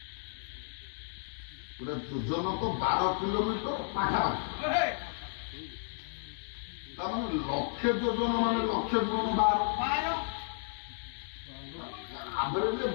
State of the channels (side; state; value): right; silent; digital silence